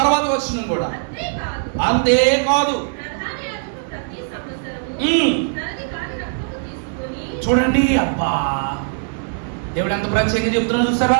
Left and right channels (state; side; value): silent; left; digital silence